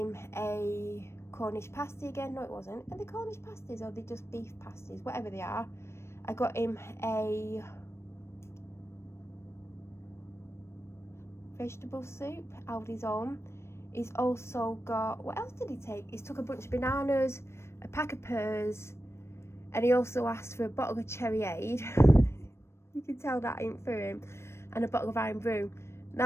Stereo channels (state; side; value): late; right; 0.13 ms